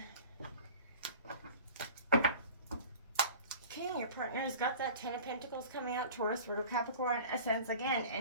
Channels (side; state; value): both; inverted; correlation -0.41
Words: partner has got that 10 of Pentacles coming out, Taurus, Virgo, Capricorn, Ascends again,